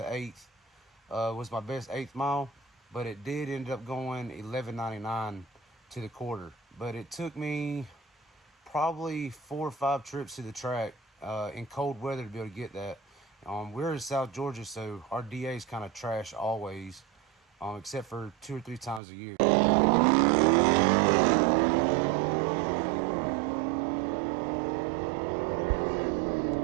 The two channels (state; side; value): drops out; left; at 19.0 s